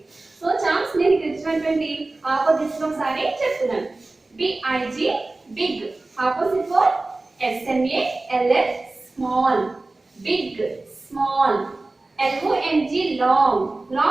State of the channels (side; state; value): left; quieter; 3.1 dB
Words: సో చాప్స్ నేను ఇక్కడ ఇచ్చినటువంటి ఆపోజిట్స్ ఒకసారి చెప్తున్నాను. B I G big, opposite for SMALL small, big small. LONG long,